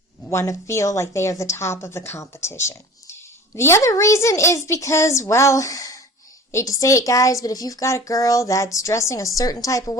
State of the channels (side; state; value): both; normal; correlation 0.41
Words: want to feel like they are the top of the competition. The other reason is because, well, hate to say it, guys, but if you've got a girl that's dressing a certain type of